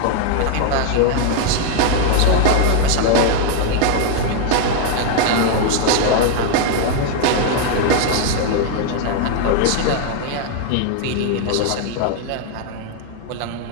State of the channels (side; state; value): both; different; correlation 0.00